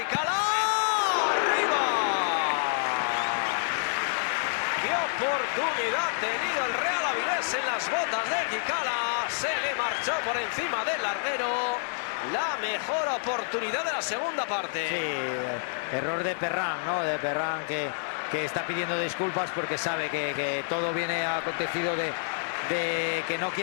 ¡Qué oportunidad ha tenido el Real Avilés en las botas de Quicala! Se le marchó por encima del larguero. La mejor oportunidad de la segunda parte. Sí, error de Perrán, ¿no? De Perrán que está pidiendo disculpas porque sabe que todo viene acontecido de que no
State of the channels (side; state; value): right; silent; 59 dB below the other